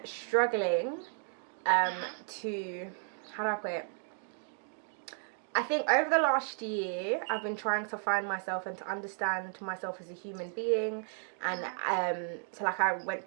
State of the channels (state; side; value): silent; left; 55 dB below the other